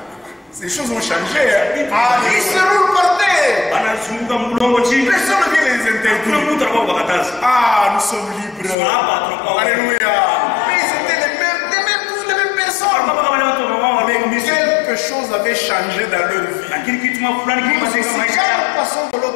Ces choses ont changé. Ils se roulent par terre. Personne ne vient les interdire. Ah, nous sommes libres. Alléluia. Mais c'était tous les mêmes personnes. Mais quelque chose avait changé dans leur vie. Parce que si quand nous passons de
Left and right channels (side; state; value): right; drops out; at 8.8 s